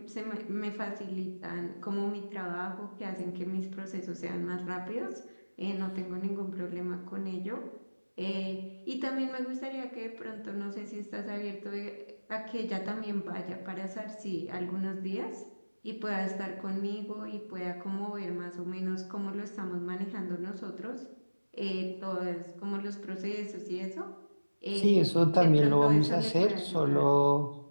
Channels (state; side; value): inverted; both; correlation -1.00